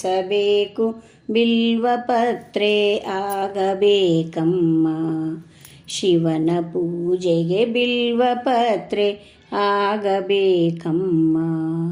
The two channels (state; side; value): identical; both; correlation 1.00